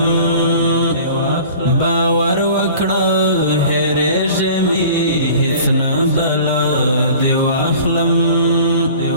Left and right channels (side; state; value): both; inverted; correlation -0.44